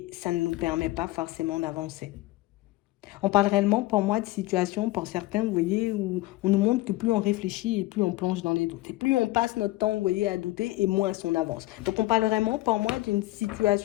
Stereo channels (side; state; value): right; quieter; 18.6 dB